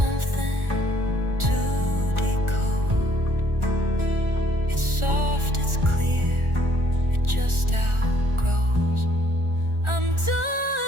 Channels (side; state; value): left; late; 1.4 ms